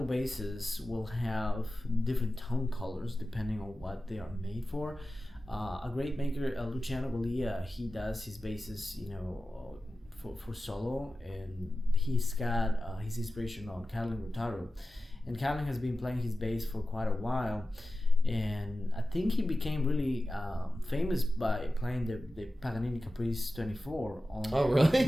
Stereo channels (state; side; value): normal; both; correlation 0.94